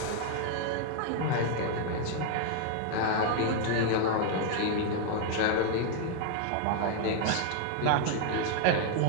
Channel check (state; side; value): different; both; correlation 0.00